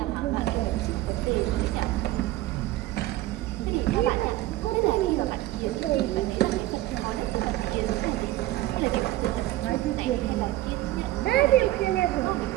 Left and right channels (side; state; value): left; quieter; 16.3 dB